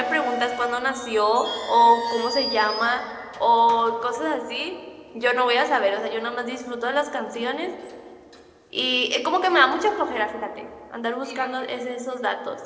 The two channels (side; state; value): both; identical; correlation 1.00